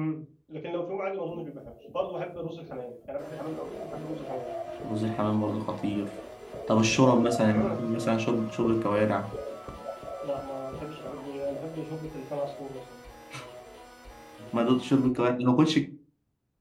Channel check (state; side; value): identical; both; correlation 1.00